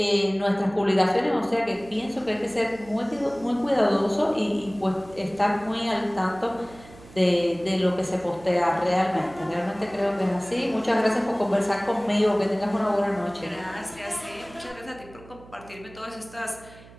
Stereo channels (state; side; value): noise; right; hum, 21 dB below the sound